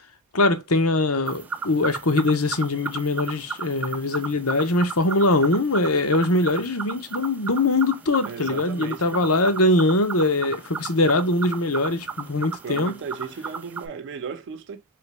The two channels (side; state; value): both; normal; correlation 0.07